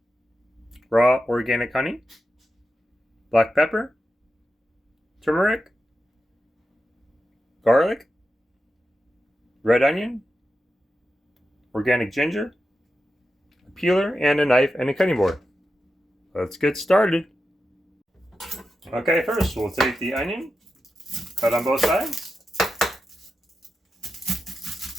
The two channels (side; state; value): both; normal; correlation 0.90